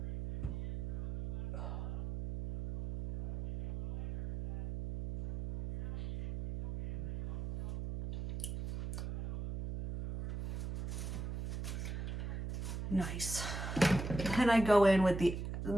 Nice. And I go in with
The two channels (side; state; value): right; noise; hum, 6 dB below the sound